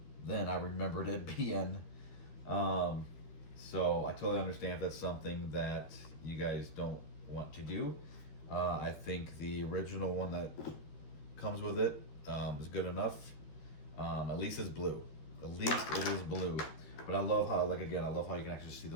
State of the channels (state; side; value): late; right; 13 ms